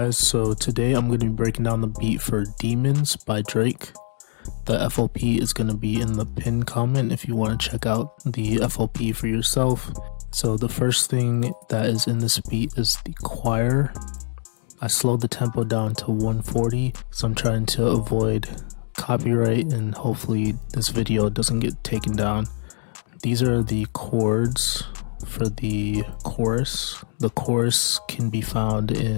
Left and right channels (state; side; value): silent; right; digital silence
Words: so today I'm going to be breaking down the beat for Demons by Drake. The FLP is going to be in the pinned comment if you want to check out the FLP for yourself. So the first thing that is in this beat is the choir. I slowed the tempo down to 140 because I'm trying to avoid copyright and hopefully this video doesn't get taken down. These are the chords for the chorus. The chorus can be found